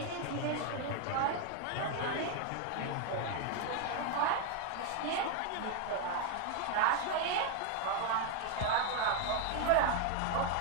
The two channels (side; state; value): both; different; correlation 0.01